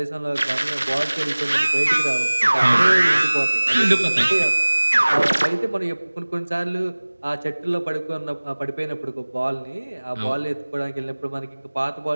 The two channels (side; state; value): both; inverted; correlation -1.00